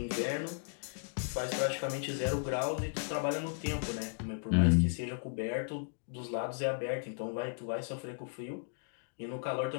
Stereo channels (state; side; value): silent; right; digital silence